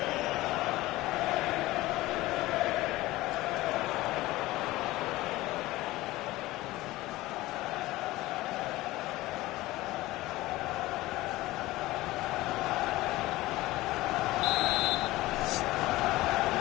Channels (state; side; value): quieter; right; 18.3 dB